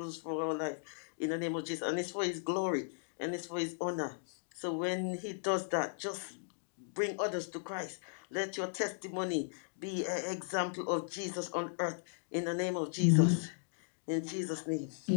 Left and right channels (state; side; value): silent; right; digital silence